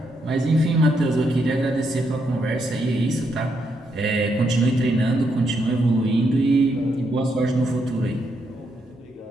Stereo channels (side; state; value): both; normal; correlation 0.79